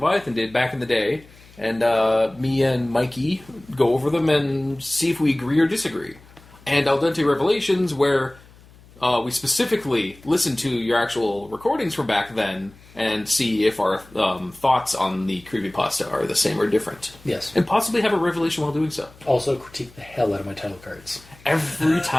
did back in the day, and me and Mikey go over them and see if we agree or disagree. And Al Dente Revelations, where we specifically listen to your actual recordings from back then and see if our thoughts on the creepypasta are the same or different. Yes. And possibly have a revelation while doing so. Also critique the hell out of my title cards. Every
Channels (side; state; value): left; noise; hum, 24 dB below the sound